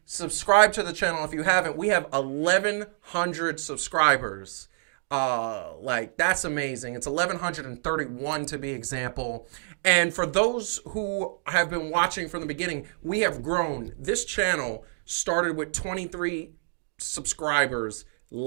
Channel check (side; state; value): left; silent; digital silence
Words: Subscribe to the channel if you haven't. We have 1,100 subscribers. That's amazing. It's 1,131 to be example. And for those who have been watching from the beginning, we have grown. This channel started with 23 subscribers